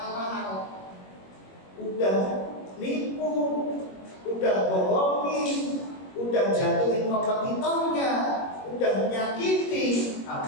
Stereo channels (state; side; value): late; right; 21 ms